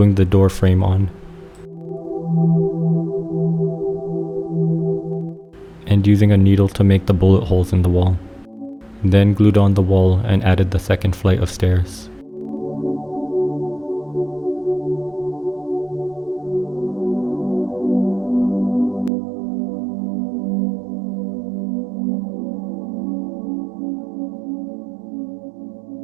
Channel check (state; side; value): drops out; left; at 19.1 s